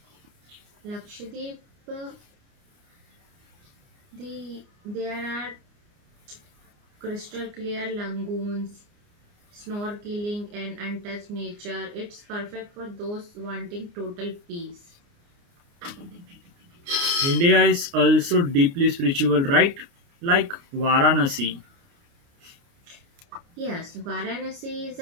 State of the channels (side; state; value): left; late; 29 ms